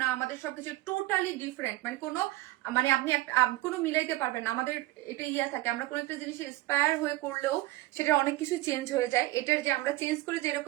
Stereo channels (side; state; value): left; quieter; 18.1 dB